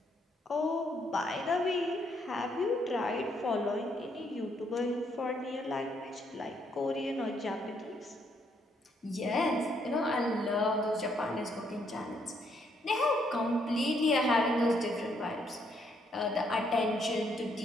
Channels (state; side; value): normal; both; correlation 0.72